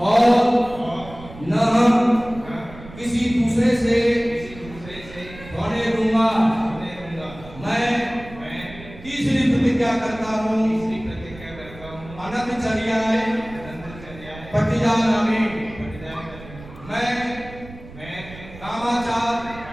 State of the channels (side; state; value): right; noise; rumble, 17 dB below the sound